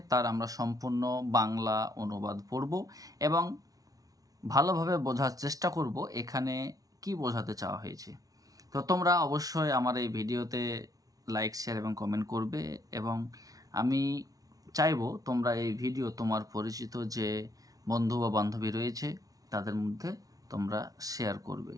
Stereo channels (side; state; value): left; late; 0.18 ms